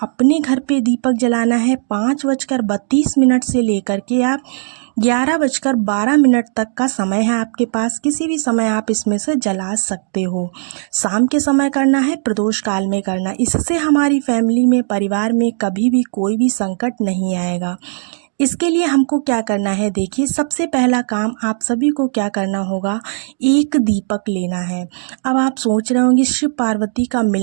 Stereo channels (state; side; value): silent; left; digital silence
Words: घर पे दीपक जलाना है। 5:32 से लेकर के आप 11:12 तक का समय है आपके पास। किसी भी समय आप इसमें से जला सकते हो। शाम के समय करना है, प्रदोष काल में करना। इससे हमारी फैमिली में, परिवार में कभी भी कोई भी संकट नहीं आएगा। इसके लिए हमको क्या करना है, देखिए सबसे पहला काम आप सभी को क्या करना होगा, एक दीपक लेना है। अब आप सोच रहे होंगे शिव पार्वती का